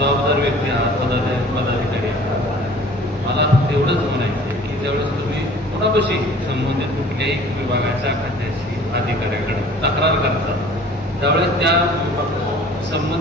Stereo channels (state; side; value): normal; both; correlation 0.49